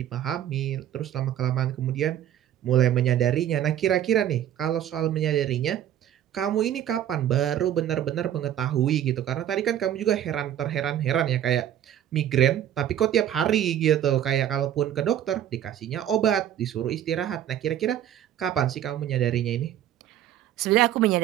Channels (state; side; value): quieter; left; 11.1 dB